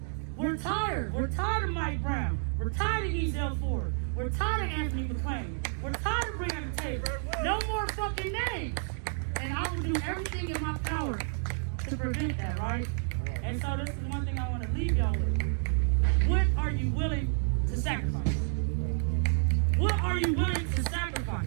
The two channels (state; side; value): silent; left; 58 dB below the other